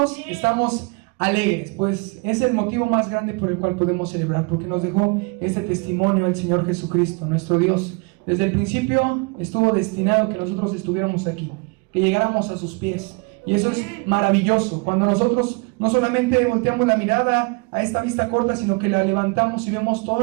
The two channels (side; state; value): left; quieter; 30.4 dB